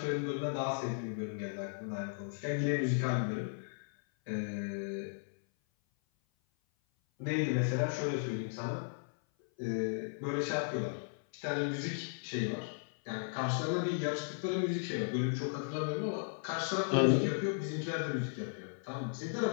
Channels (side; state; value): right; silent; 54 dB below the other